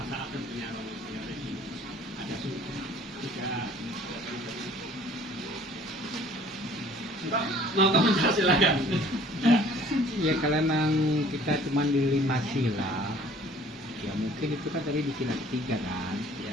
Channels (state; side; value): normal; both; correlation 0.53